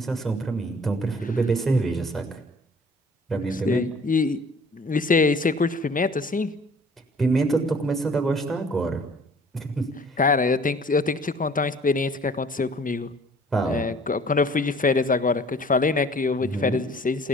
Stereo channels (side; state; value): both; normal; correlation 0.52